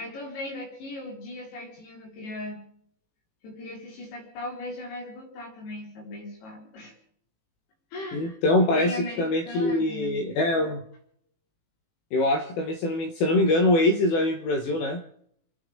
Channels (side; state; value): right; late; 18 ms